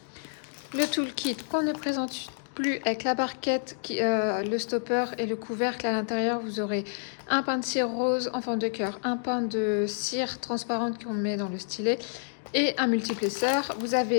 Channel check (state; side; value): silent; right; digital silence